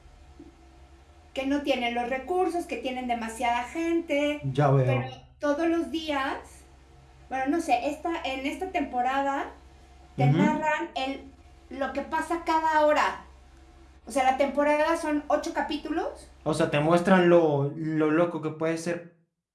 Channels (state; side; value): identical; both; correlation 1.00